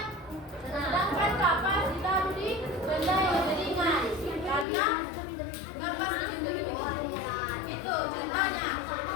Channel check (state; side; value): drops out; right; at 4.7 s